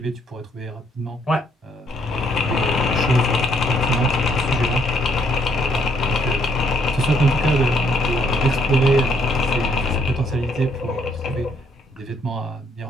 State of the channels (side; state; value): both; normal; correlation 0.69